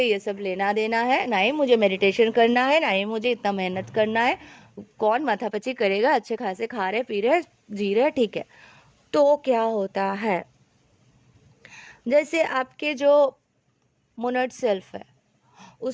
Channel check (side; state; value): both; identical; correlation 1.00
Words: ये सब लेना देना है, ना ही मुझे मेडिटेशन करना है, ना ही मुझे इतना मेहनत करना है, कौन माथापच्ची करेगा, अच्छे खासे खा रहे पी रहे जी रहे, ठीक है, तो क्या होता है, जैसे आपके जो मोनड सेल्फ है